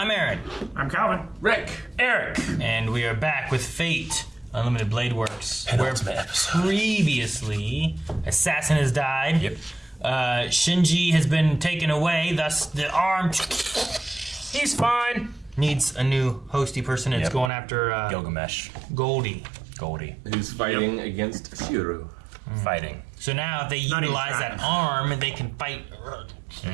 Aaron. I'm Calvin. Rick. Eric. And we are back with Fate Unlimited Blade Works. Penultimate episode. Previously, Assassin has died. Yep. Shinji has been taken away, thus the arm... He's fine. Needs a new hosty person. It's going after Gilgamesh. Goldie. Who's fighting against Shiro. Fighting. So now if they utilize that arm, they can fight.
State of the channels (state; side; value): drops out; left; at 17.5 s